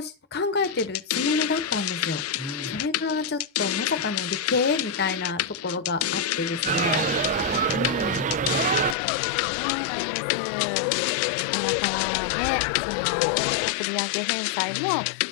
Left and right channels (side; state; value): right; drops out; at 9.0 s